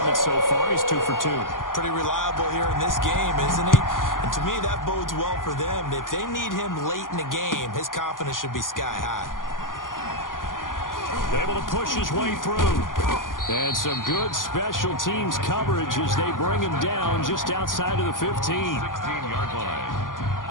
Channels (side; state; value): right; late; 0.90 ms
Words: so far. He's 2 for 2. Pretty reliable here in this game, isn't he? And to me, that bodes well for them. If they need him late in the game, his confidence should be sky high. Able to push his way through. And some good special teams coverage as they bring him down just outside of the 15. 16-yard line.